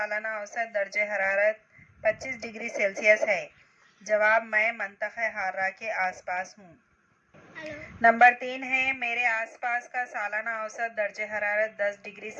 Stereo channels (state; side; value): identical; both; correlation 1.00